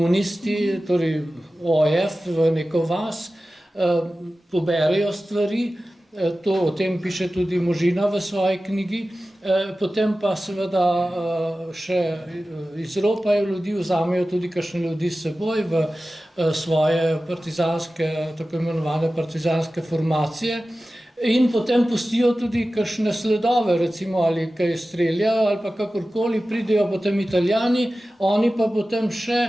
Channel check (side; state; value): both; normal; correlation 0.95